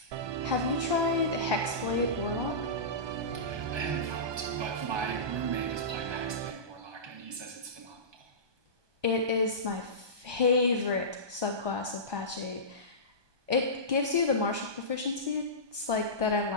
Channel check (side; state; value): left; late; 1.2 ms